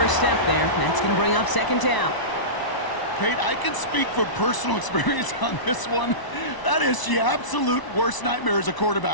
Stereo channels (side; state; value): right; late; 1.0 ms